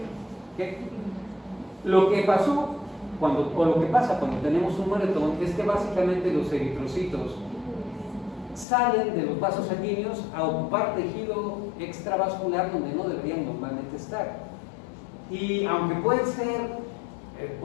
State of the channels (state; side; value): drops out; right; at 8.7 s